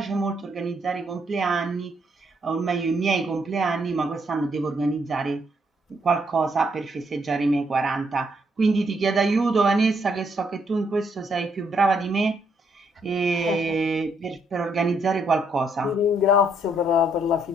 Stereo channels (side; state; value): both; normal; correlation 0.73